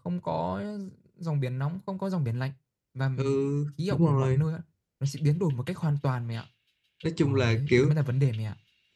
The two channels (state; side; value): identical; both; correlation 1.00